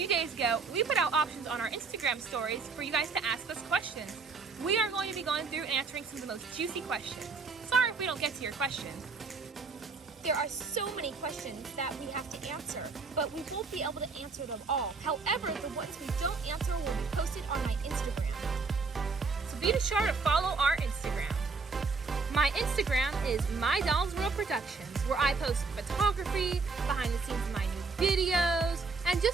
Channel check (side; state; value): left; quieter; 4.5 dB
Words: days ago, we put out options on our Instagram stories for you guys to ask us questions. We are going to be going through and answering some of the most juicy questions. Sorry if we don't get to your questions. There are so many questions that we have to answer, but we won't be able to answer them all. However, the ones we don't answer will be posted on my Instagram. So be sure to follow our Instagram. My Instagram is My Dolls World Productions, where I post photography, behind the scenes of my new videos, and